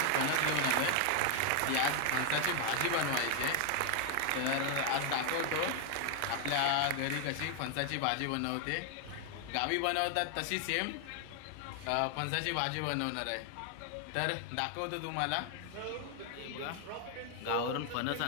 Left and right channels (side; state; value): both; different; correlation 0.00